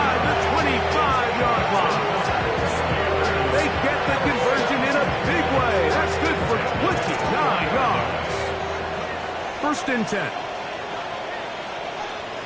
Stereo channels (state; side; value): identical; both; correlation 1.00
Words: the 25-yard line. They get the conversion in a big way. That's good for 29 yards. First and 10.